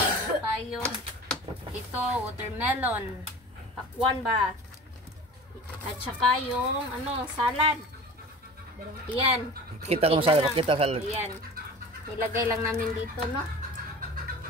tayo. Ito, watermelon. Pakwan ba? At saka yung ano, salad. Ayan. Pakita ko salad, pakita salad. Ayan. Nilagay lang namin dito, no?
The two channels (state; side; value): normal; both; correlation 0.38